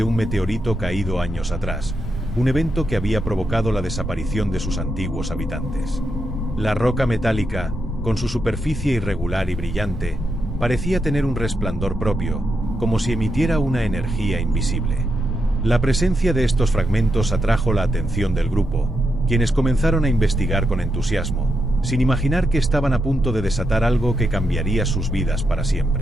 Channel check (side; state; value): both; normal; correlation 0.84